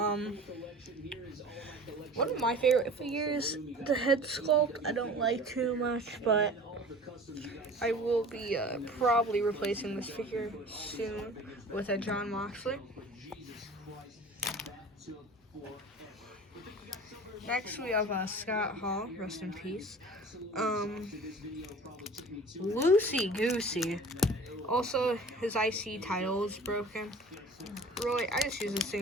One of my favorite figures, the head sculpt, I don't like too much, but I will be probably replacing this figure soon with a Jon Moxley. Next we have Scott Hall, rest in peace. Loosey Goosey. Also, his IC title is broken. Really, I just use this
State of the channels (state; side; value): normal; both; correlation 0.42